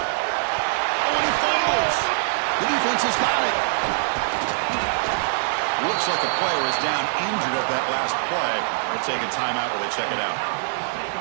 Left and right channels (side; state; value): left; silent; 63 dB below the other